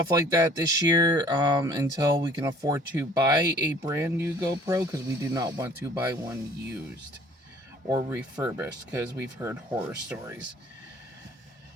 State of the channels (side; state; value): both; normal; correlation 0.53